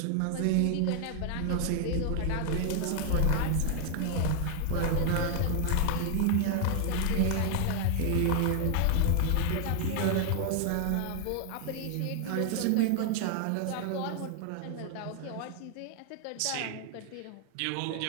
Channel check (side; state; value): both; different; correlation 0.00